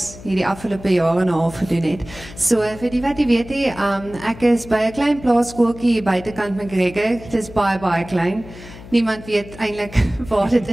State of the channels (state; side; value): noise; left; hum, 17 dB below the sound